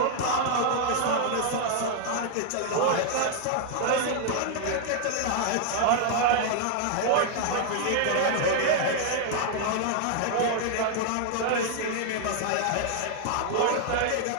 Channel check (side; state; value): both; different; correlation 0.00